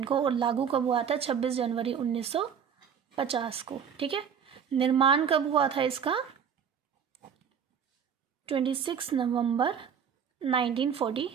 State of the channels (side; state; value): left; quieter; 7.6 dB